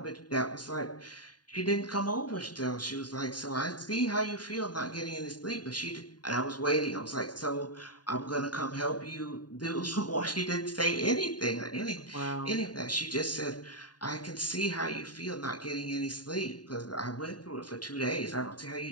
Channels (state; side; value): late; right; 0.70 ms